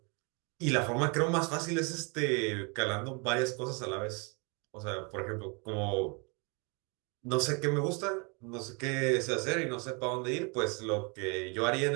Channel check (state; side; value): quieter; left; 32.6 dB